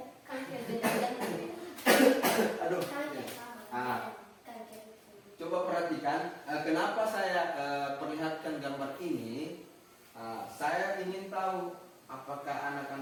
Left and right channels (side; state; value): both; identical; correlation 1.00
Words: Aduh. Coba perhatikan. Kenapa saya perlihatkan gambar ini? Saya ingin tahu apakah